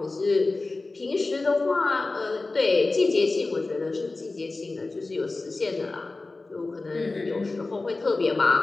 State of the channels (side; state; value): right; quieter; 3.4 dB